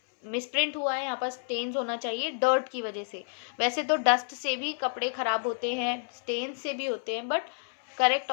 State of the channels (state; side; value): silent; right; 58 dB below the other